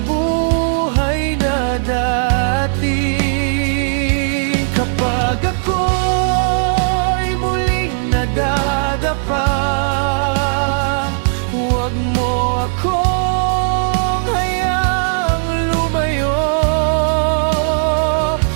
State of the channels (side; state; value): left; silent; digital silence